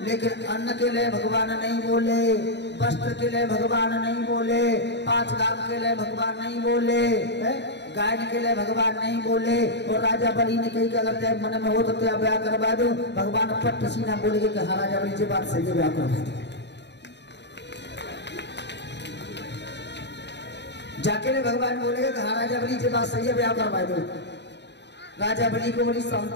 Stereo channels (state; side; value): late; right; 0.50 ms